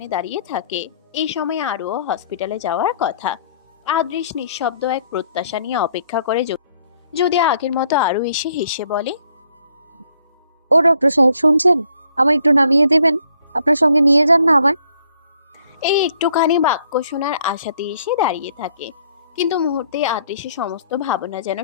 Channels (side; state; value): both; inverted; correlation -0.66